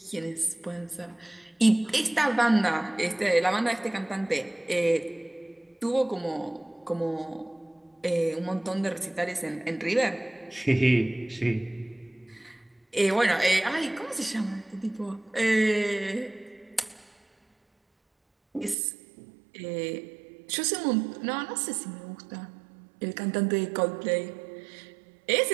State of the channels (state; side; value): drops out; left; at 18.8 s